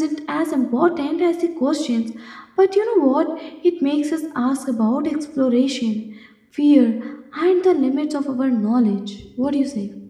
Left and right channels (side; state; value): both; identical; correlation 1.00